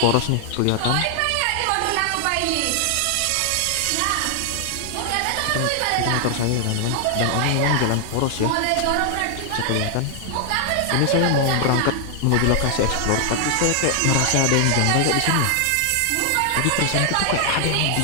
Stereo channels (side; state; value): both; different; correlation 0.00